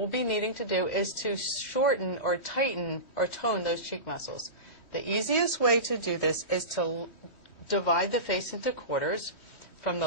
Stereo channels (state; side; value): late; right; 3.1 ms